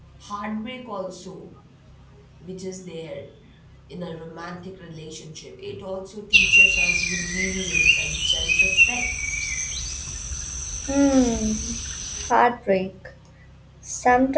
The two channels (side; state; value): both; identical; correlation 1.00